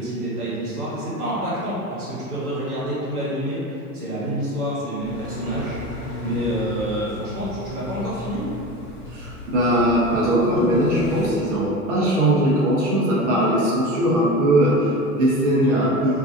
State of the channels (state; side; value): normal; both; correlation 0.30